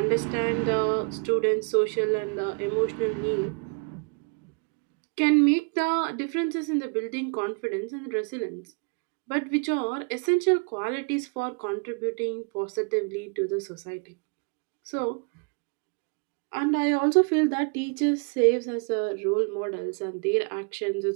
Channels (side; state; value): left; quieter; 36.4 dB